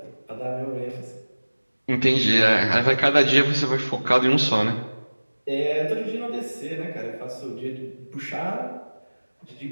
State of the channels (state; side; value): inverted; both; correlation -1.00